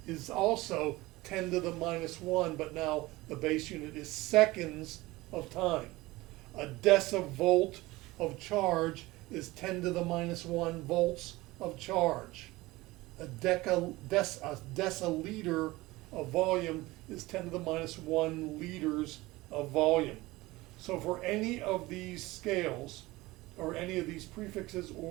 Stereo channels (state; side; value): quieter; left; 20.0 dB